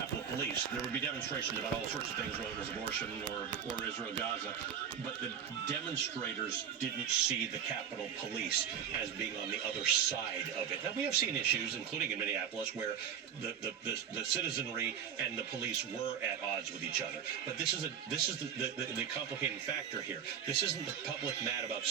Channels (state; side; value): quieter; left; 8.4 dB